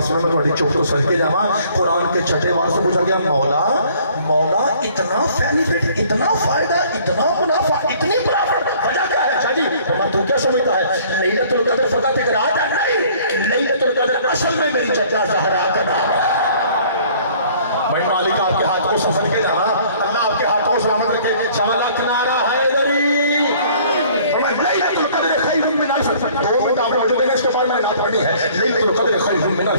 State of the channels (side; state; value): both; inverted; correlation -0.56